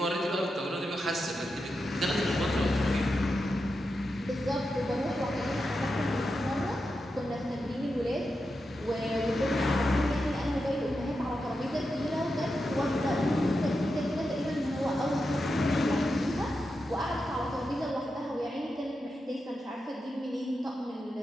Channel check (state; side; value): normal; both; correlation 0.88